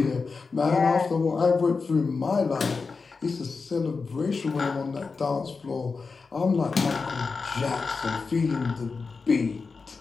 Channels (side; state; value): right; quieter; 4.6 dB